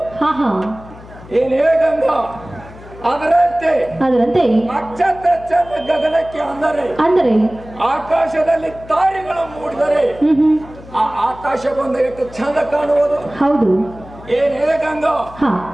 ಏನೇ ಗಂಗಾ, ಅದರಂತೆ ನಕ್ಷತ್ರ ಚಂದ ಗಗನಕ್ಕೆ ಅಂದರೆ ಆಕಾಶದಲ್ಲಿ ತಾರೆಗಳು ಮೂಡಿದರೆ ಆ ಆಕಾಶ ಬಂದ ಎಷ್ಟು ಚಂದ ಕಾಣುವುದು. ಹೌದು. ಏನೇ ಗಂಗಾ,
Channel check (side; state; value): left; noise; hum, 19 dB below the sound